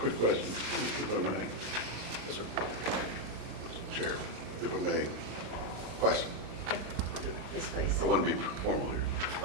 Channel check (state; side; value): late; left; 37 ms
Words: question, if I may. Yes, sir. Mr. Chair, if I may. Question. Yes, please. I want to be formal here.